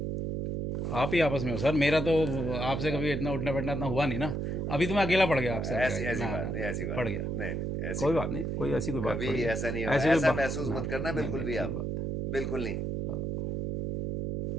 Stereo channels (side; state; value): right; noise; hum, 2 dB below the sound